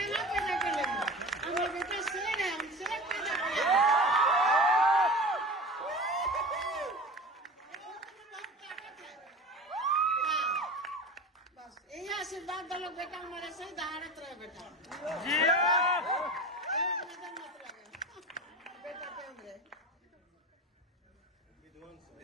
ना पैदा कर लेंगे। हमारा बेटा शेर है, हम शेर पैदा करेंगे। बस यही आशीर्वाद दलो बेटा, हमारे सही दहाड़त रहे बेटा। एक नजर मत लगे बेटा पे हमरे।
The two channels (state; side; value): normal; both; correlation 0.33